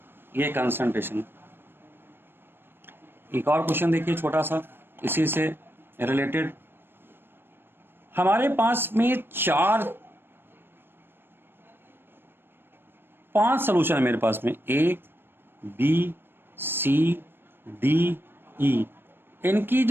ये कंसंट्रेशन। एक और क्वेश्चन देखिए छोटा सा इसी से रिलेटेड। हमारे पास में 5 सॉल्यूशन है मेरे पास में, A B C D E। इनकी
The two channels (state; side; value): late; left; 0.10 ms